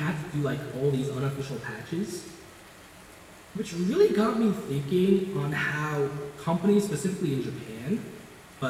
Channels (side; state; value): both; identical; correlation 1.00